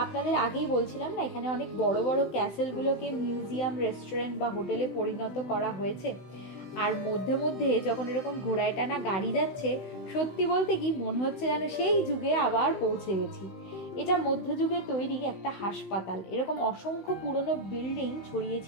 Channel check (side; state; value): right; late; 16 ms